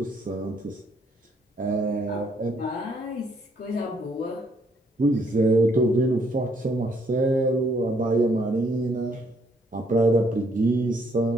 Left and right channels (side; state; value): both; normal; correlation 0.68